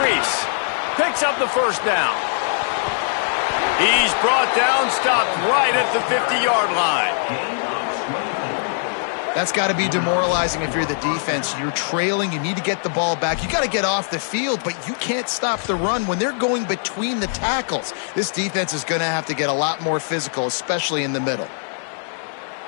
Picks up the 1st down. He's brought down, stopped right at the 50-yard line. That's got to be demoralizing if you're the defense. You're trailing. You need to get the ball back. You got to get off the field, but you can't stop the run when they're going between the tackles. This defense is going to have to get a lot more physical, especially in the middle.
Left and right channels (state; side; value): silent; right; digital silence